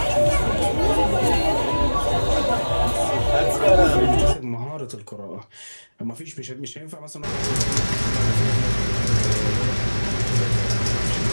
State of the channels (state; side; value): inverted; both; correlation -1.00